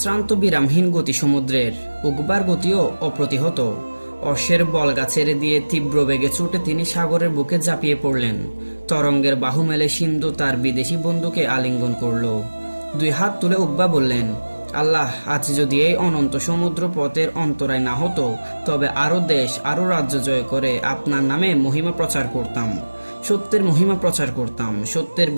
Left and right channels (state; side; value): inverted; both; correlation -1.00